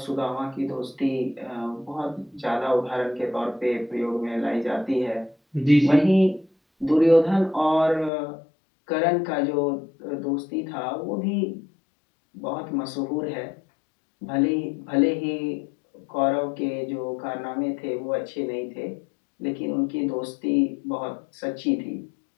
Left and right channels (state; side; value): drops out; right; at 8.1 s